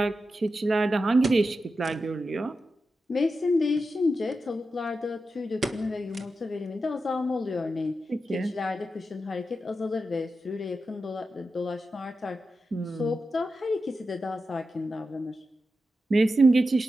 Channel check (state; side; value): normal; both; correlation 0.90